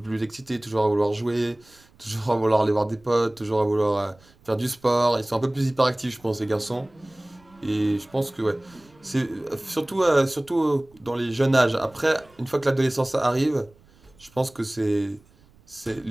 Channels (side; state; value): right; noise; rumble, 29 dB below the sound